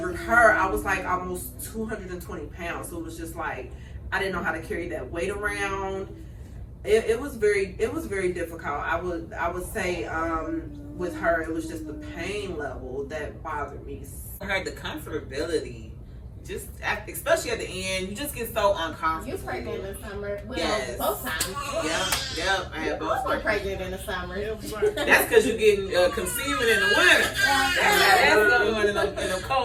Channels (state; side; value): identical; both; correlation 1.00